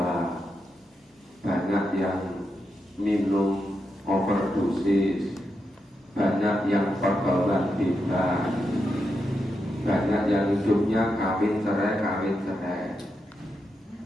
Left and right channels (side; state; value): both; normal; correlation 0.85